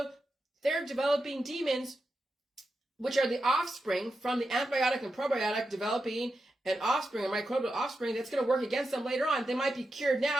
they're developing demons, which are the offspring from the antibiotic and probiotic, developing an offspring, a microbial offspring that's going to work against them later on. They might be cured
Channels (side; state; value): both; normal; correlation 0.88